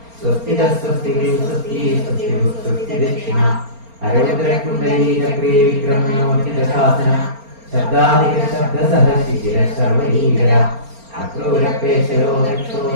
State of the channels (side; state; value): left; late; 4.3 ms